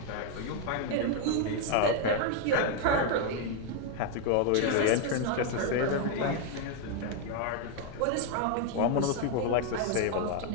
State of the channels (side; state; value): both; different; correlation 0.00